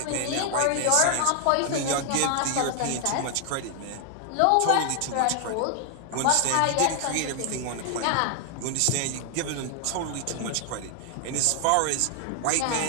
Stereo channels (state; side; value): different; both; correlation 0.00